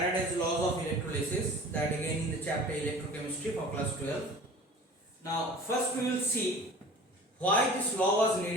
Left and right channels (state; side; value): normal; both; correlation 0.42